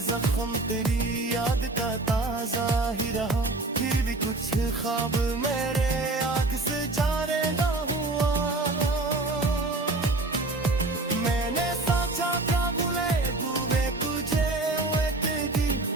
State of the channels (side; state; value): left; quieter; 3.0 dB